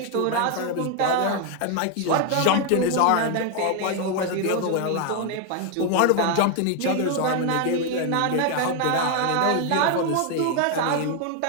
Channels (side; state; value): both; different; correlation 0.01